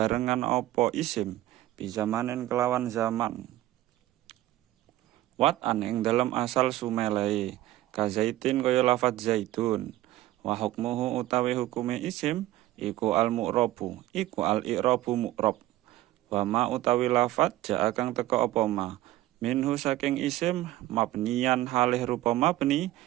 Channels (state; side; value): quieter; left; 15.5 dB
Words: apa isim bi zamanin kelawan zaman watan ing dalam asal sumelae kazaitin kaya lafadz zaitun wa hukmuhu utawi hukume isim iku al mu'rabu iku al i'rabu mu'rab wa ma utawi lafadz jaa kang teka apa ma minhu saking isim mabniyan halih rupa mabni